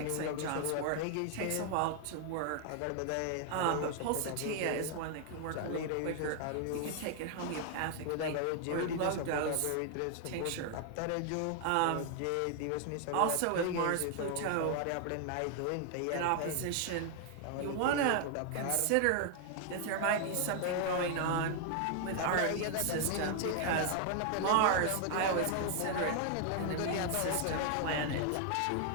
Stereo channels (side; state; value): both; different; correlation 0.00